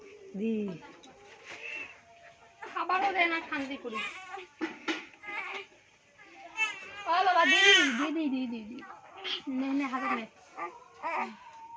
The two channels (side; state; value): both; identical; correlation 1.00